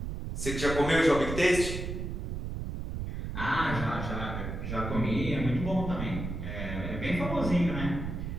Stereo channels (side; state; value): right; noise; rumble, 5 dB below the sound